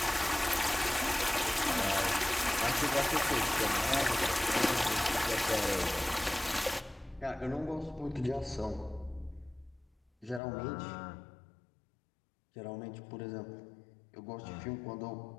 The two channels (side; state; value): right; drops out; at 10.4 s